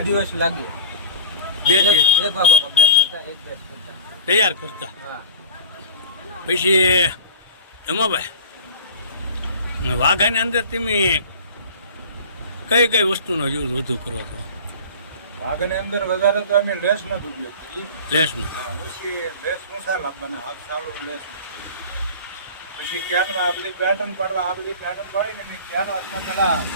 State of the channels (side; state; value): both; inverted; correlation -0.37